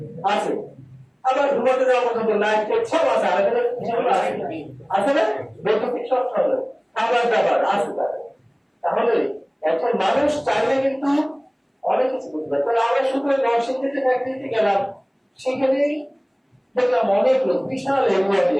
আছে। আবার ঘুমাতে যাওয়া পর্যন্ত লাইট সব আছে, আছে না, বৈদ্যুতিক সব চলে, খাবার দাবার আছে তার। তাহলে এখন মানুষ চাইলে কিন্তু অনেক কিছু করতে পারে। তাহলে আমরা শুধু নরসিংদীতে ফ্যাক্টরিতে গেলাম, সেখানেই দেখলাম অনেক লোক, বিশাল এরিয়া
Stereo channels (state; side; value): identical; both; correlation 1.00